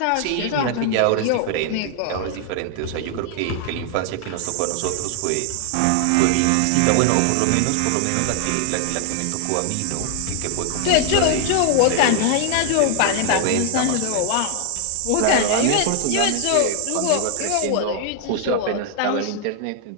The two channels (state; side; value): different; both; correlation 0.00